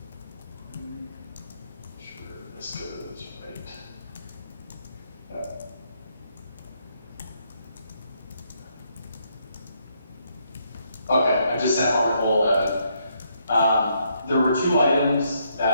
Sure, this goes right. Okay, I just sent Article 11. There were 2 items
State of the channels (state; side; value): inverted; both; correlation -0.74